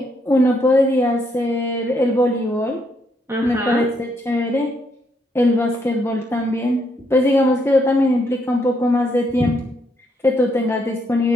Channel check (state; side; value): normal; both; correlation 0.75